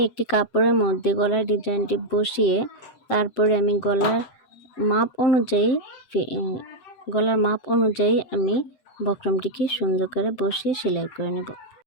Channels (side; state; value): right; late; 7.9 ms